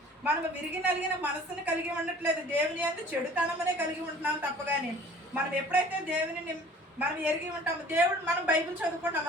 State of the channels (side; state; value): both; normal; correlation 0.49